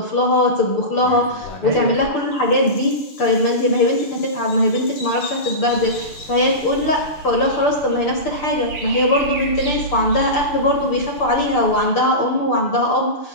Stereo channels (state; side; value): late; right; 6.8 ms